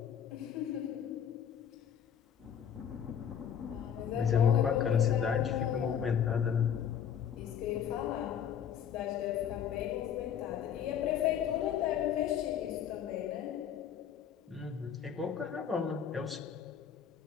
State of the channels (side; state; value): right; quieter; 8.5 dB